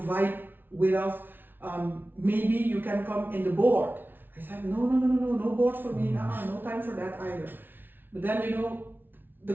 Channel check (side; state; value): left; late; 0.096 ms